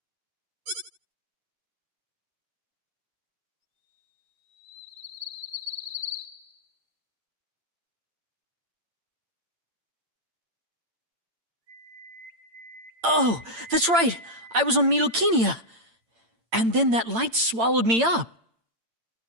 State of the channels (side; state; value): left; late; 8.8 ms